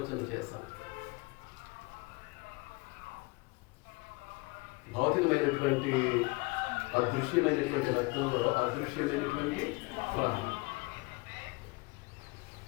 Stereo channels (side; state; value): right; quieter; 26.0 dB